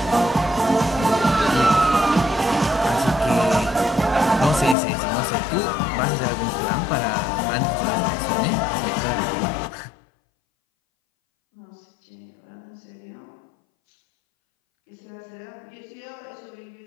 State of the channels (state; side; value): drops out; right; at 4.8 s